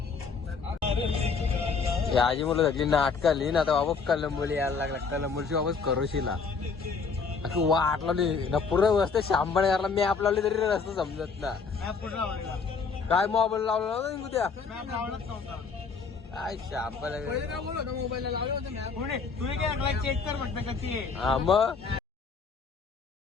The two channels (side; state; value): right; quieter; 5.1 dB